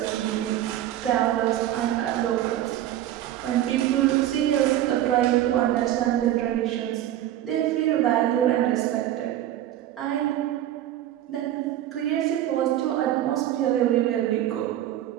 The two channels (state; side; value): quieter; left; 12.6 dB